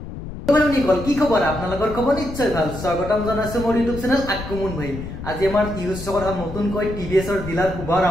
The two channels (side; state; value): left; noise; rumble, 9 dB below the sound